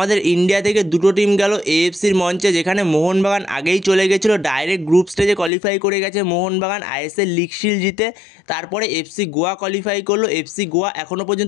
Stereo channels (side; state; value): right; drops out; at 5.5 s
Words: ইন্ডিয়া থেকে দুটো টিম গেল এএফসির মঞ্চে, যেখানে মোহনবাগান আগেই চলে গেছিলো, ডাইরেক্ট গ্রুপ স্টেজে কোয়ালিফাই করে গেছে মোহনবাগান আইএসএল লিগ শিল্ড জিতে। তারপরে এফসি গোয়া কোয়ালিফাই করলো। এফসি গোয়া এখনও